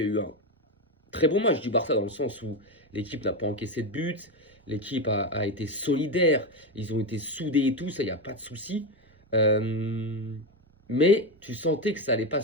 eu un très bon match du Barça dans le sens où l'équipe n'a pas encaissé de but, l'équipe a été solidaire, ils ont été soudés et tout, ça, il n'y a pas de souci. Mais tu sentais que ça n'allait pas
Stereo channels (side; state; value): both; normal; correlation 0.13